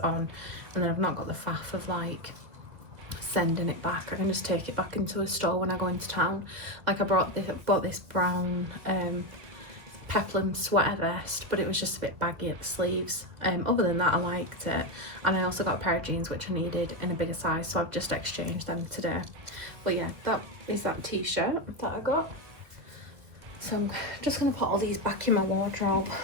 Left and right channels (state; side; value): late; left; 1.8 ms